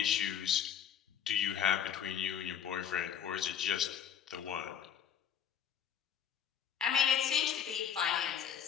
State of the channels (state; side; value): quieter; right; 8.9 dB